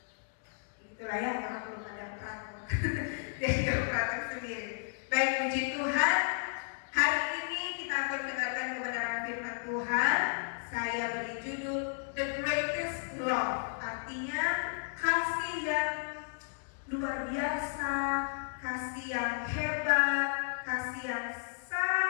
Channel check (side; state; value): right; silent; digital silence